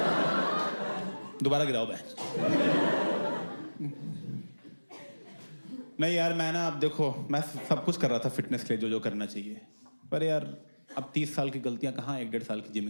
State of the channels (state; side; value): inverted; both; correlation -1.00